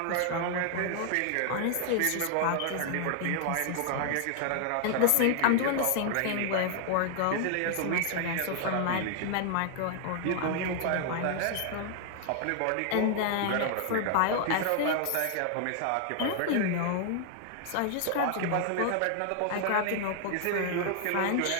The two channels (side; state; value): both; different; correlation 0.00